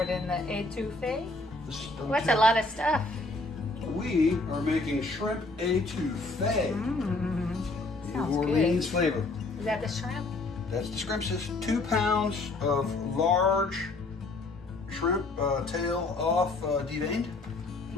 in the étouffée. What's a Sounds lot of stuff? We are making shrimp étouffée. New Sounds Orleans good. flavor. Is that the shrimp? That's the shrimp, sis. 2 pounds of large shrimp tail off deveined.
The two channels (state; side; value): quieter; right; 3.2 dB